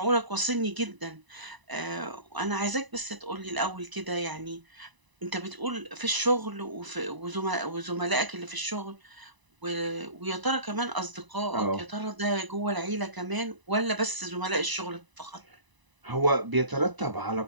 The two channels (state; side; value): late; left; 1.0 ms